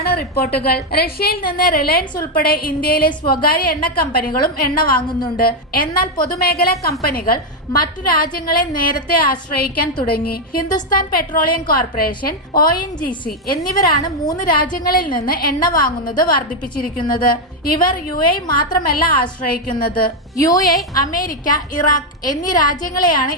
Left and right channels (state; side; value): normal; both; correlation 0.03